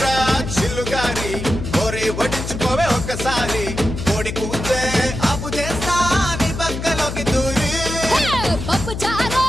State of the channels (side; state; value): left; noise; hum, 6 dB below the sound